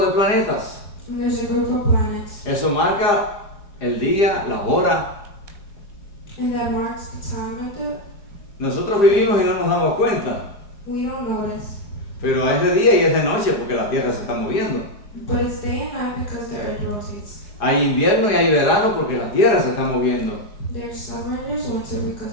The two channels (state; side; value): late; right; 4.8 ms